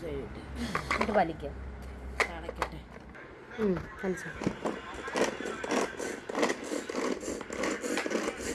എന്നിട്ട് വലിക്കുക. അടയ്ക്കട്ടെ. വലിച്ചു.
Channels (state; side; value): identical; both; correlation 1.00